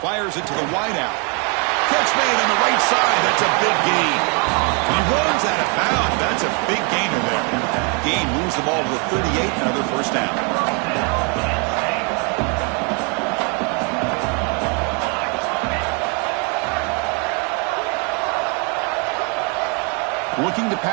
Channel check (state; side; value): quieter; left; 35.0 dB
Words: Fires it to the wideout. Catch made on the right side. That's a big gain. He runs out of bounds. That's a big gainer there. Gain moves the ball to the 38. Another first down. Looking to